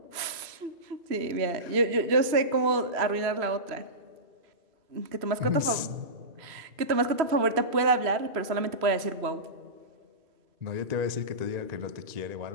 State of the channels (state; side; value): late; left; 3.0 ms